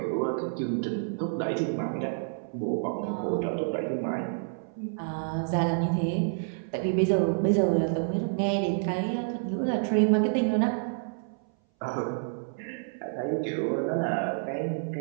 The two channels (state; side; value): silent; left; 58 dB below the other